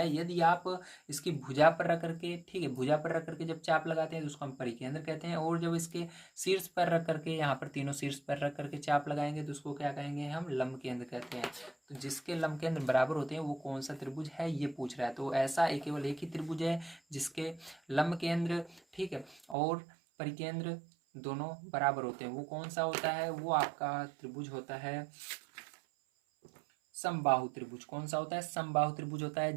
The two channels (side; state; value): left; drops out; at 19.6 s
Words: यदि आप इसकी भुजा पर रख करके, ठीक है, भुजा पर रख करके जब चाप लगाते हैं तो उसको हम परिकेंद्र कहते हैं, और जब इसके शीर्ष पर रख करके, यहाँ पर तीनों शीर्ष पर रख करके चाप लगाएंगे तो उसको क्या कहेंगे, हम लंब केंद्र कहते हैं। तो जिसके लंब केंद्र बराबर होते हैं वो कौन सा त्रिभुज है, ये पूछ रहा है। तो ऐसा केवल एक ही त्रिभुज है जिसके लंब केंद्र, ठीक है, और परिकेंद्र दोनों बराबर होते हैं। वो कौन सा होता है, वो आपका त्रिभुज होता है समबाहु त्रिभुज। कौन सा होता है, समबाहु त्रिभुज होता है